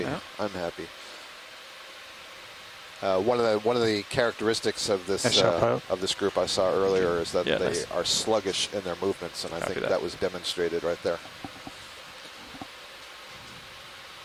I'm happy. One of the characteristics of this group I saw earlier is that they are sluggish in their movements, and I think that was demonstrated right there.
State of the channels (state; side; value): identical; both; correlation 1.00